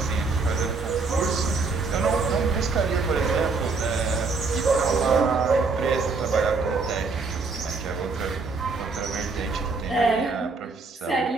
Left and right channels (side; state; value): left; quieter; 4.2 dB